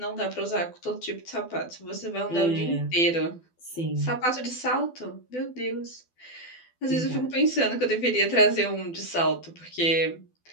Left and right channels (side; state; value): right; late; 12 ms